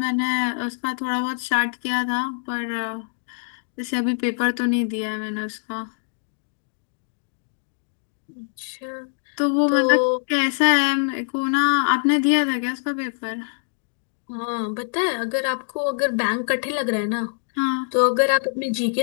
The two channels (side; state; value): right; silent; digital silence